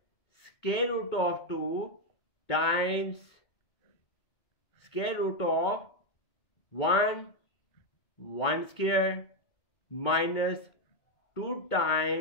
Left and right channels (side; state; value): right; late; 2.2 ms